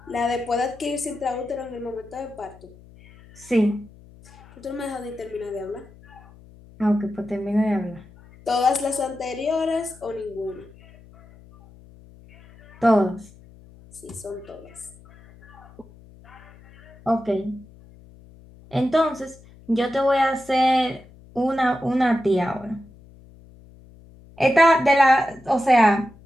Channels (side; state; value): left; noise; hum, 23 dB below the sound